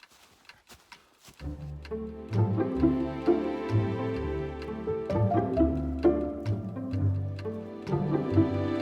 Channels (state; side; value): identical; both; correlation 1.00